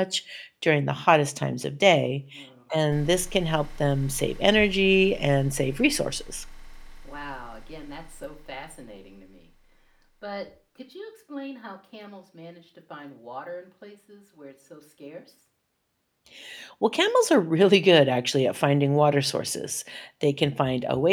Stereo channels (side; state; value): both; identical; correlation 1.00